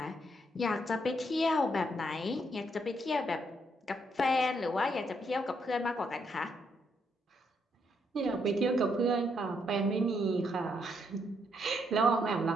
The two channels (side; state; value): both; normal; correlation 0.75